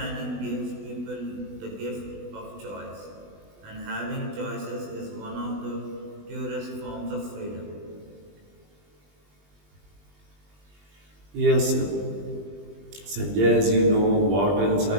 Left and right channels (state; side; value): late; left; 20 ms